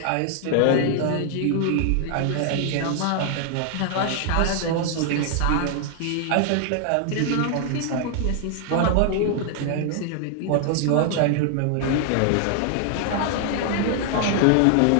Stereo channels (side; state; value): both; different; correlation 0.00